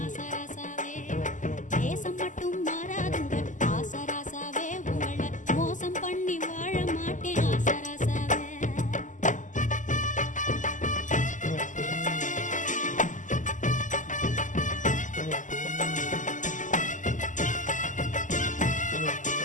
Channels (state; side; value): late; right; 0.37 ms